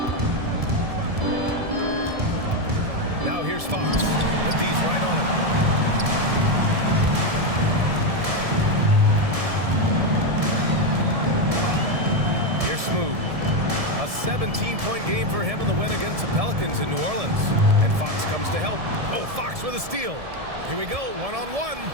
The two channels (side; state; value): left; late; 1.7 ms